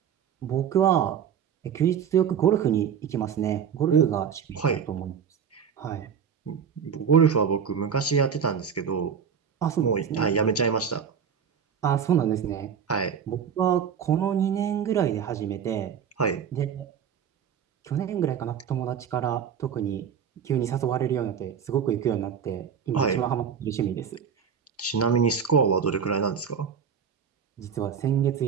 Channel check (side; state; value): left; quieter; 7.5 dB